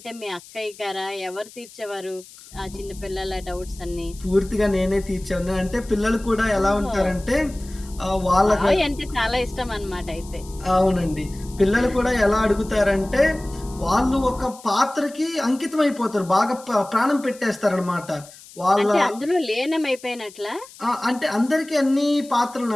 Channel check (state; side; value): noise; left; hiss, 20 dB below the sound